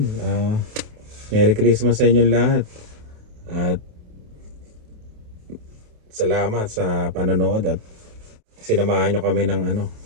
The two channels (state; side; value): late; left; 28 ms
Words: Merry Christmas sa inyong lahat. At salamat sa panonood at sinamahan nyo kami ng ano,